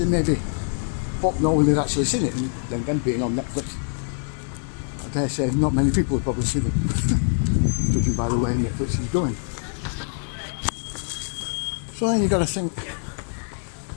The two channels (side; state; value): right; silent; 61 dB below the other